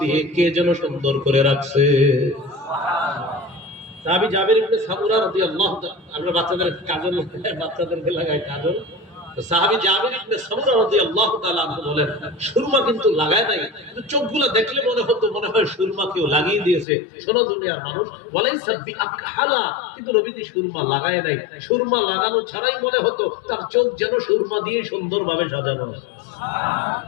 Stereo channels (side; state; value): right; drops out; at 16.9 s